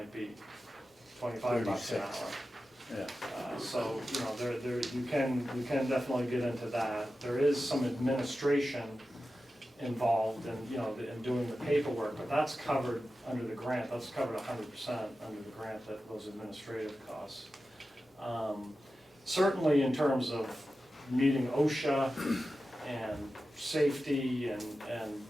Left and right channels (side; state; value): both; normal; correlation 0.93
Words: be $25 an 36. hour. Yeah. So, you know, you can definitely get into that. There is some administration involved in, you know, in doing the paperwork, but that's covered under the grant. That's covered 100% under the grant, those administrative costs. Certainly in terms of meeting OSHA and safety and